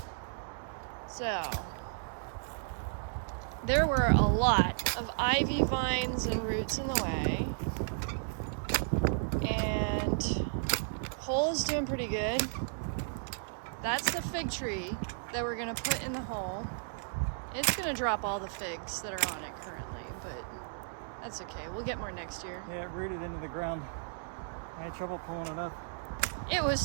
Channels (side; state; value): left; silent; digital silence